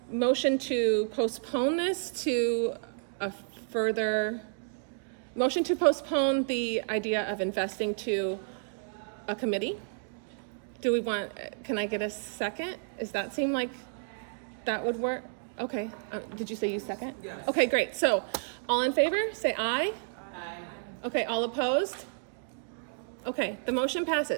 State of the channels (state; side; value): silent; left; digital silence